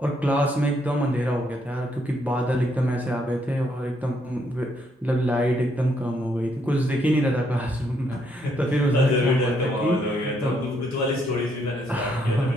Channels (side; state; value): both; normal; correlation 0.73